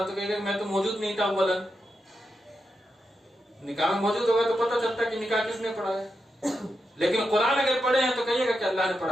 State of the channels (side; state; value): both; normal; correlation 0.87